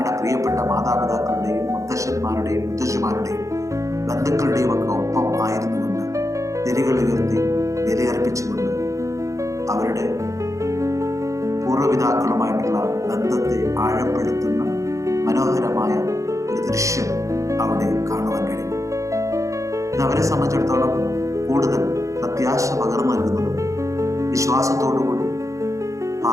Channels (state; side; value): late; left; 0.15 ms